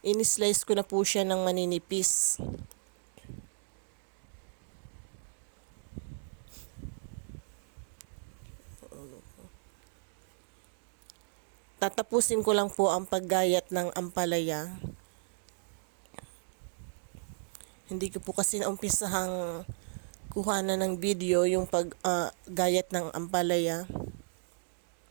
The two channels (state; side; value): silent; left; digital silence